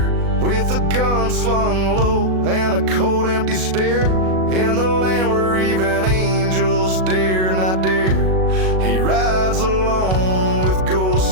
with a gun slung low and a cold empty stare, in the land where even angels dare not dare. He rides alone with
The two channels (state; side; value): late; left; 37 ms